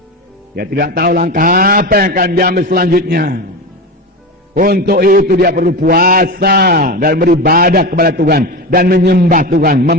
Dia tidak tahu langkah apa yang akan diambil selanjutnya. Untuk itu dia perlu puasa dan beribadah kepada Tuhan dan menyembah Tuhan,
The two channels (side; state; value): both; normal; correlation 0.22